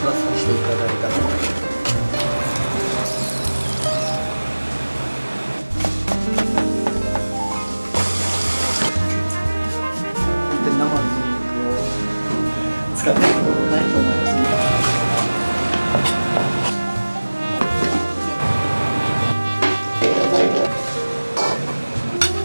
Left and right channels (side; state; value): both; inverted; correlation -1.00